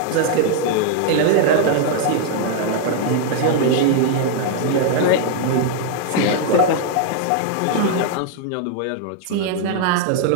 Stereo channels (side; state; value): both; different; correlation 0.00